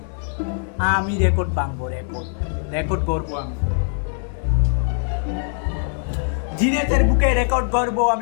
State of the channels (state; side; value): silent; right; 64 dB below the other